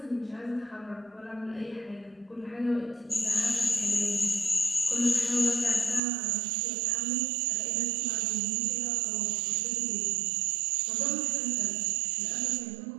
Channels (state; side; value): drops out; left; at 6.0 s